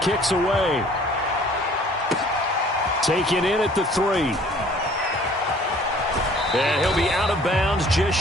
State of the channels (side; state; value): both; normal; correlation 0.54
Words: away. Taken in at the 3. And he'll be out of bounds just